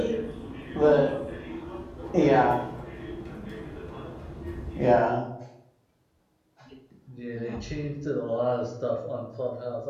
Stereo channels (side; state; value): both; identical; correlation 1.00